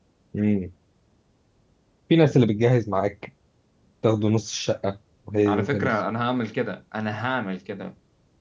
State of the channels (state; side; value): identical; both; correlation 1.00